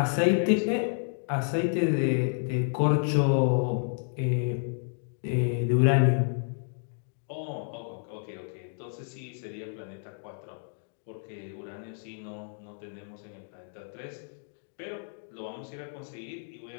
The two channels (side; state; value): right; silent; digital silence